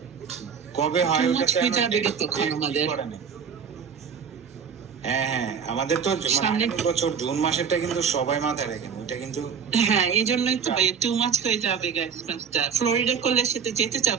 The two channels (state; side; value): quieter; left; 6.8 dB